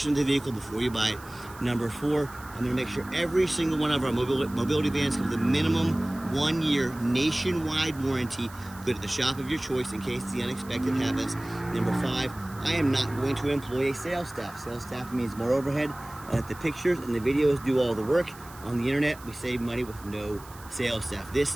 of the vehicle before you buy it. Number 4, I'm going to make sure every single one of our mobility vans have the minimum 1 year nationwide warranty. Go to the shop of your choice in case the unexpected happens. Number 5, I am not going to employ a sales staff. Sales staff means more overhead. The pictures and the videos do all the work. On the internet, we save money with no sales staff.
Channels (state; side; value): noise; right; hiss, 20 dB below the sound